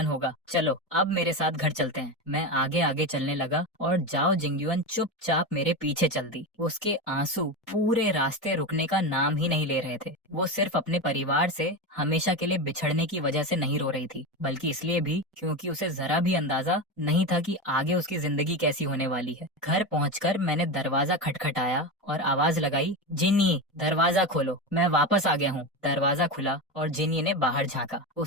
होगा। चलो अब मेरे साथ घर चलते हैं। मैं आगे आगे चलने लगा और जाओ जिंगयुआन चुपचाप मेरे पीछे चल दी। उसके आंसू पूरे रास्ते रुकने का नाम ही नहीं ले रहे थे। वो सिर्फ अपने परिवार से हमेशा के लिए बिछड़ने की वजह से नहीं रो रही थी, बल्कि इसलिए भी क्योंकि उसे जरा भी अंदाजा नहीं था कि आगे उसकी जिंदगी कैसी होने वाली है। घर पहुंचकर मैंने दरवाजा खटखटाया और आवाज लगाई, जिन्नी दरवाजा खोलो, मैं वापस आ गया हूँ। दरवाजा खुला और जिन्नी ने बाहर झांका।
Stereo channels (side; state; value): both; normal; correlation 0.19